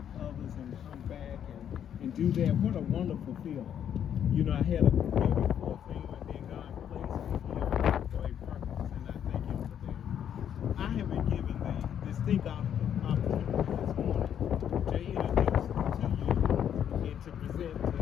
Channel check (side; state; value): right; quieter; 9.3 dB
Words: others and come back and do that. What a wonderful feeling. You know, I had a very full thing, and then God placed me here for a purpose, and I thank Him for that. I have been given the distinct opportunity this morning to introduce to you and to present to